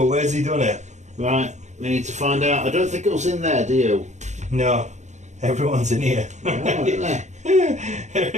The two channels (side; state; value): left; late; 0.34 ms